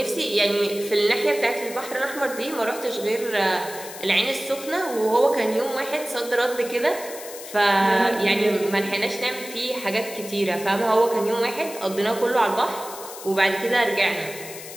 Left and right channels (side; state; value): left; noise; hiss, 13 dB below the sound